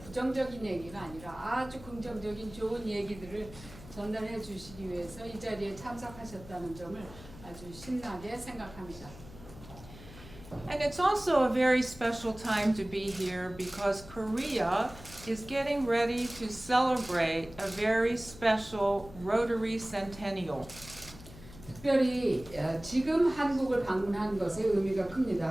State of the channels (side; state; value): left; noise; hum, 17 dB below the sound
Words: 얘기가 아니라 아주 긍정적인 좋은 얘기들을 전달해 주시기 위해서 이 자리에 참석하셨다는 점을 아주 신나게 생각합니다. And it's also a very special time to be here because Korea is getting ready to celebrate a very special Rotary Centennial. 특별히 지금 한국을 방문한 것의 의미가 큽니다.